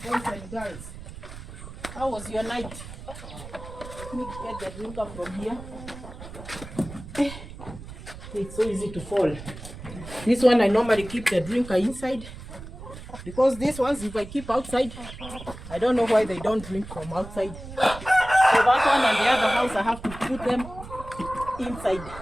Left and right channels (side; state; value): right; noise; rumble, 13 dB below the sound